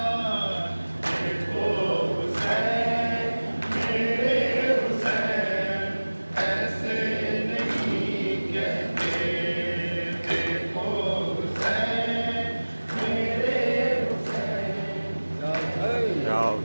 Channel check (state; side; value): inverted; both; correlation -1.00